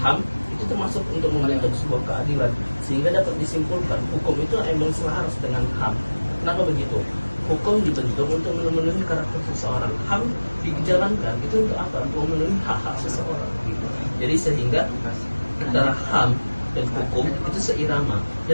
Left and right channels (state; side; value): inverted; both; correlation -1.00